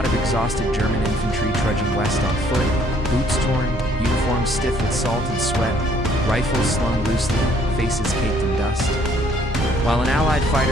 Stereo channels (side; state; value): both; normal; correlation 0.63